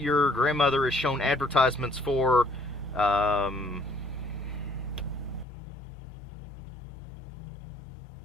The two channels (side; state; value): right; drops out; at 5.5 s